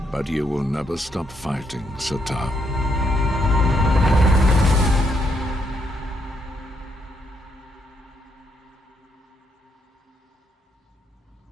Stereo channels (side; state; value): both; normal; correlation 0.76